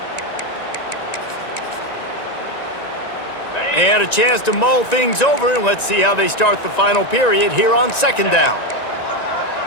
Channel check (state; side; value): late; right; 1.9 ms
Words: They had a chance to mull things over, and let's see how they start the final period here on second down.